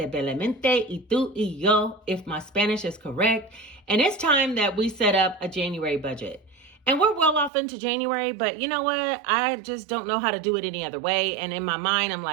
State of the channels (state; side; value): drops out; left; at 7.5 s